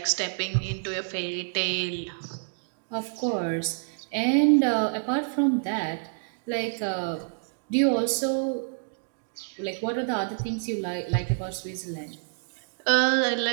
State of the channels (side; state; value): left; silent; digital silence